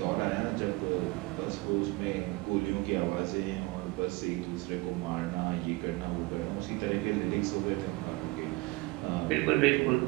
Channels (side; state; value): left; quieter; 22.7 dB